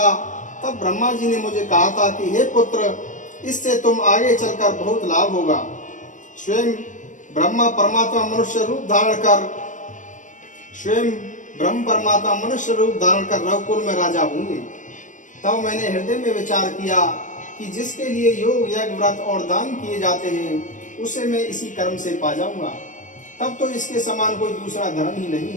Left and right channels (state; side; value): late; right; 0.37 ms